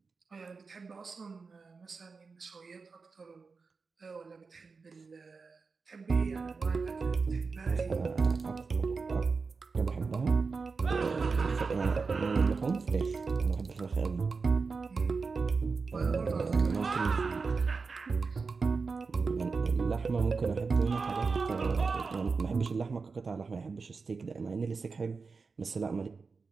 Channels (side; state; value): left; quieter; 4.6 dB